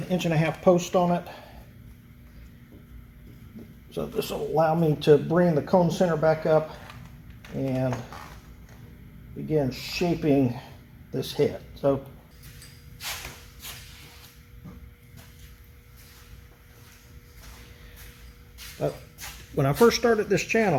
1.5-inch post on it. So this will allow me to bring the cone center back up and begin shaping this head. So when I first started this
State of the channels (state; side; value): identical; both; correlation 1.00